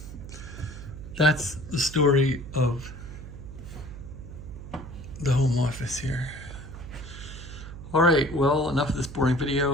that's the story of the home office here. All right, well, enough of this boring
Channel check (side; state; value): right; noise; hum, 12 dB below the sound